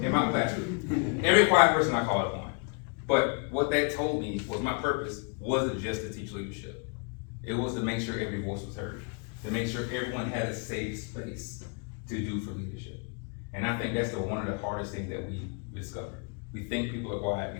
my classroom. Every quiet person I called upon. But what that told me was my purpose wasn't just to teach leadership. It was to make sure every voice was heard, to make sure everyone had a safe space to do for leadership. And I think that's one of the hardest things that we discover. We think people are quiet, we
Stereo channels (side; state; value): right; quieter; 37.8 dB